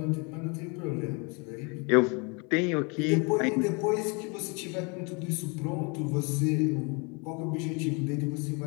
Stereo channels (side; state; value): right; quieter; 31.9 dB